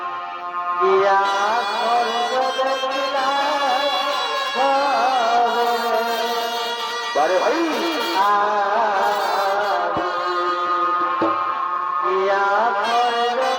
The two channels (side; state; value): both; identical; correlation 1.00